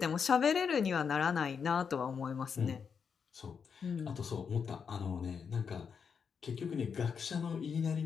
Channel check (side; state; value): right; quieter; 6.4 dB